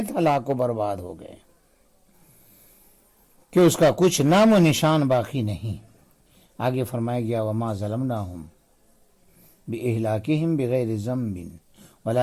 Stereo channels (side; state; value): both; identical; correlation 1.00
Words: ہلاک و برباد ہو گئے کہ اس کا کچھ نام و نشان باقی نہیں۔ آگے فرمایا گیا وما ظلمناہم بإہلاکہم بغیر ذنب